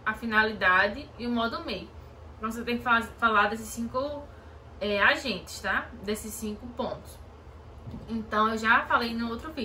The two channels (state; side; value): identical; both; correlation 1.00